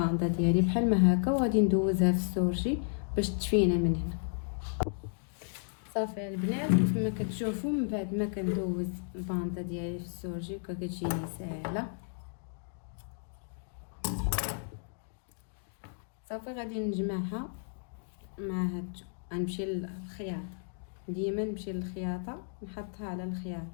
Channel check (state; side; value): silent; right; digital silence